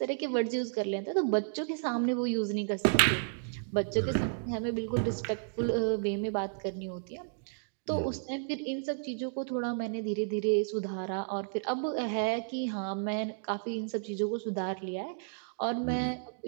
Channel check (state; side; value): silent; left; digital silence